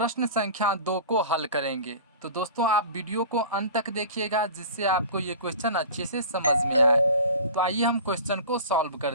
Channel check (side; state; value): both; inverted; correlation -0.38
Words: संख्या 2 को हल करेंगे। तो दोस्तों, आप वीडियो को अंत तक देखिएगा जिससे आपको ये क्वेश्चन अच्छे से समझ में आए। तो आइए हम क्वेश्चन को सॉल्व